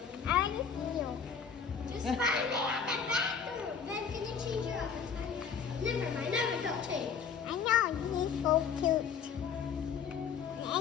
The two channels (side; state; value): right; quieter; 6.7 dB